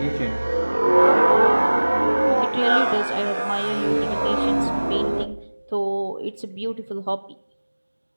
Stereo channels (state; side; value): inverted; both; correlation -1.00